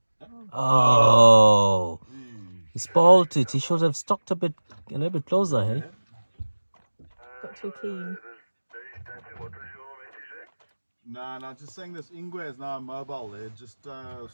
Oh, he spoiled it. He should have stuck a little bit closer, hey? Got too keen. No, just saying this Ingwe is now mobile. They're just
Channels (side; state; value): both; inverted; correlation -1.00